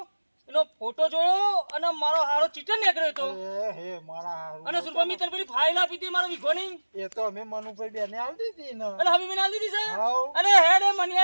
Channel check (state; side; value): inverted; both; correlation -1.00